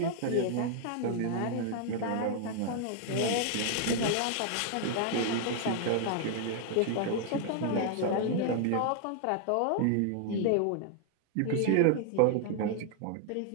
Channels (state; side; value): different; both; correlation 0.00